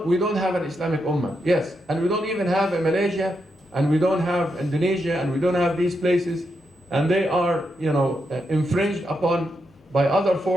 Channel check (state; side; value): normal; both; correlation 0.83